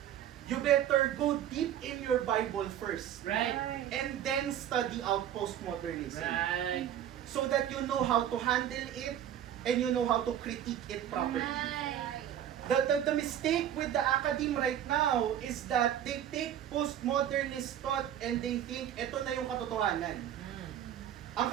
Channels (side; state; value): left; quieter; 10.6 dB